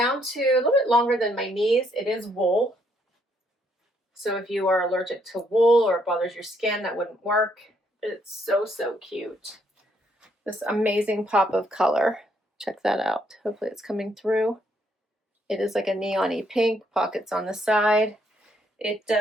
to a little bit longer than my knees. It is wool. So if you are allergic to wool or it bothers your skin, that wouldn't work. It's so cute. This amazing pop of color. Check that out. Hopefully it's coming through. It is like a neon-y pink, pockets on the side. It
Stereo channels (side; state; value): both; normal; correlation 0.71